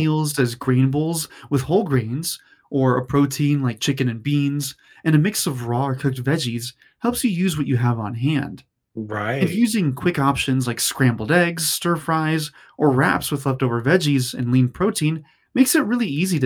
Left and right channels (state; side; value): identical; both; correlation 1.00